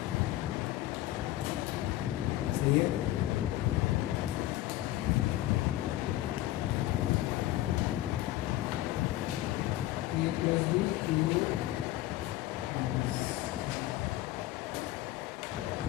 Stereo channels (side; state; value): right; quieter; 15.4 dB